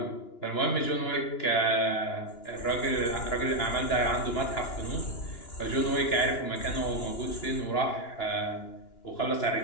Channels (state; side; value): late; right; 2.9 ms